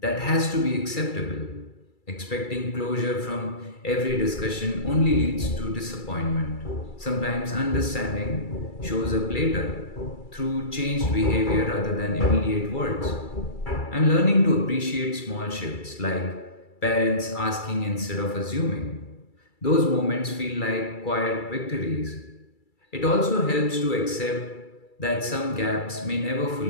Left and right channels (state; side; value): late; right; 2.3 ms